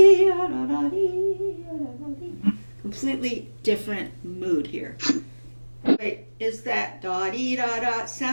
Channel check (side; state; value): both; inverted; correlation -1.00